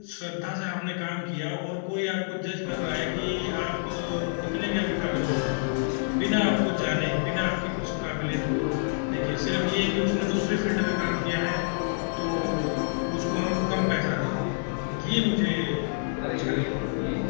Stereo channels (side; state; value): right; silent; digital silence